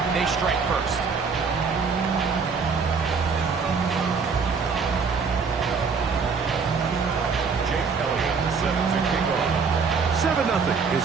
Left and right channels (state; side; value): quieter; left; 5.3 dB